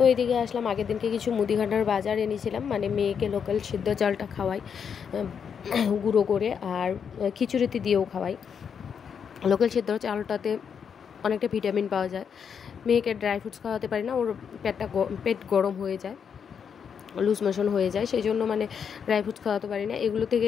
এইদিকে আসলাম, আগের দিনকে কিছু মুদিখানার বাজার এনেছিলাম, মানে মেয়েকে লোকাল সিদ্ধ চালটা খাওয়াই গুঁড়ো করে, আর খিচুড়িতে দিয়েও খাওয়াই। লোকাল সিদ্ধ চালটাতে অনেকটা ভিটামিন পাওয়া যায়। মেয়েকে ড্রাই ফ্রুটস খাওয়াতে পারি না, ওর পেট গরম হয়ে যায়, লুজ মোশন হয়ে যায়, সেই জন্য মানে ড্রাই ফ্রুটস খাওয়াতে পারি না। এগুলো থেকে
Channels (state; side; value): quieter; right; 7.1 dB